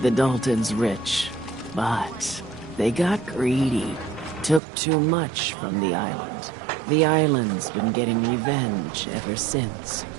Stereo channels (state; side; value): drops out; left; at 4.6 s